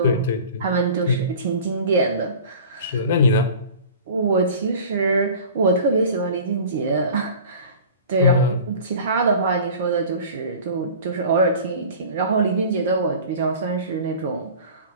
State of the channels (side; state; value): both; inverted; correlation -0.41